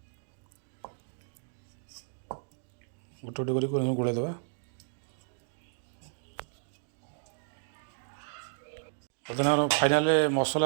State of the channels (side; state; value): left; silent; digital silence